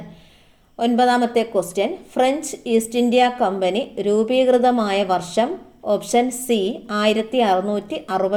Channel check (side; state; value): both; identical; correlation 1.00